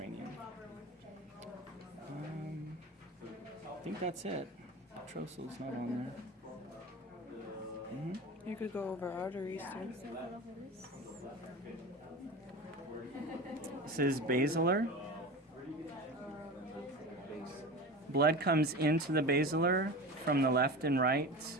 I think that's it. Petrosal's not on there. You could go over arteries too. This is basilar. Blood comes into the basilar from the left and right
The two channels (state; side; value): normal; both; correlation 0.31